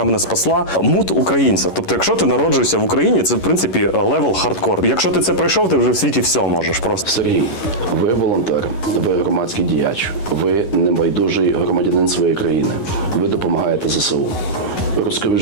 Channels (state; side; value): late; right; 11 ms